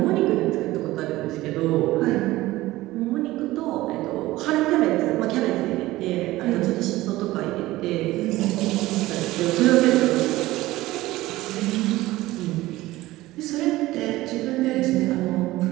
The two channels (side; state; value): left; quieter; 17.6 dB